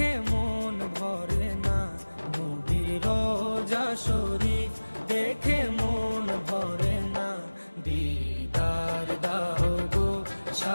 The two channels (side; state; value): both; inverted; correlation -1.00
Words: মন ভরে না, নবীর রোজা শরীফ দেখে মন ভরে না। দিদার দাও গো